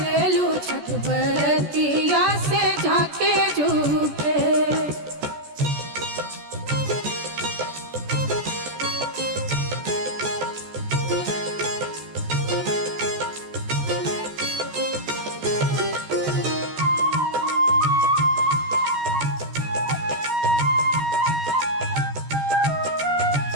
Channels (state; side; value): late; left; 14 ms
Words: छठ बरतिया से झाके झूके।